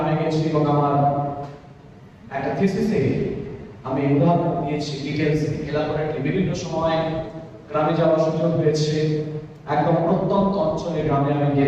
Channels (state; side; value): identical; both; correlation 1.00